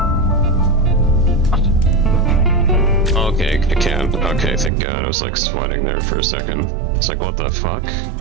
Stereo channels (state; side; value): drops out; left; at 4.7 s